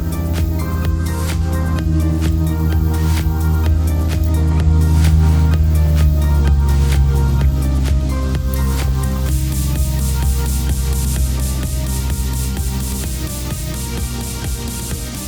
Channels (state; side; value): identical; both; correlation 1.00